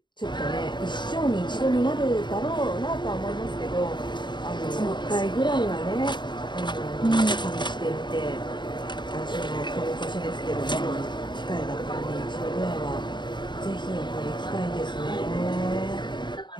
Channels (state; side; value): late; right; 0.22 ms